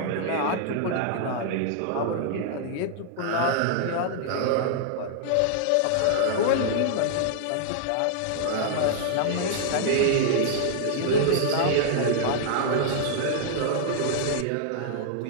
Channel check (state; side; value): different; both; correlation -0.01